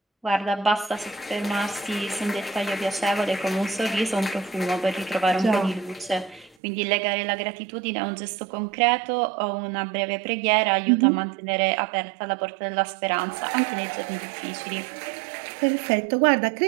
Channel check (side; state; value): left; drops out; at 6.6 s